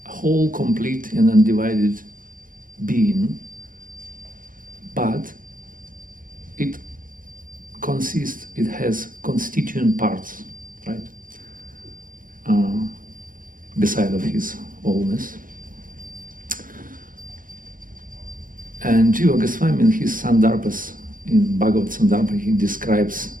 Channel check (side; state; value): left; late; 0.40 ms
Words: a whole, complete and undivided being, but it has constituent parts, right? Beside of his wholeness. And Jiva Goswami in his Sandarbhas, in Bhagavad Sandarbha, he describes